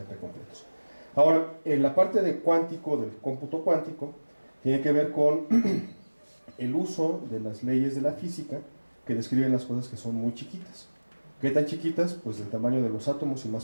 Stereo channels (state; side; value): inverted; both; correlation -1.00